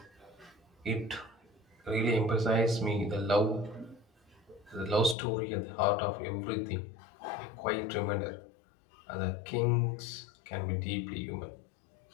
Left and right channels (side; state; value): right; drops out; at 5.2 s